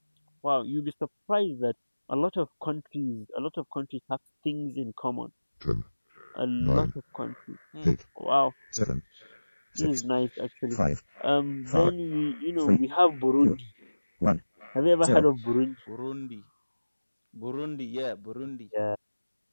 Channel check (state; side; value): inverted; both; correlation -1.00